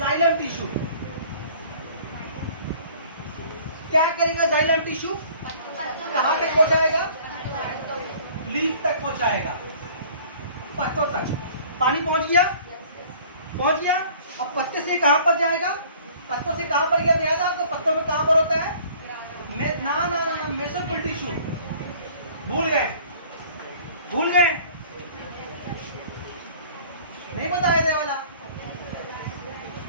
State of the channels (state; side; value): inverted; both; correlation -0.51